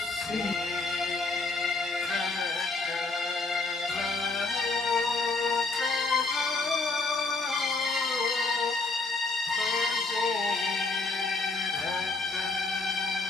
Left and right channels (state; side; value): quieter; right; 3.7 dB